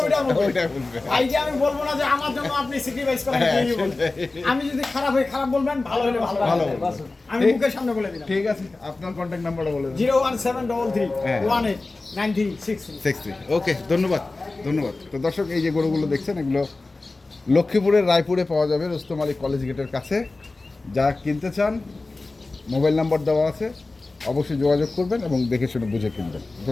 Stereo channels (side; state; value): right; quieter; 3.3 dB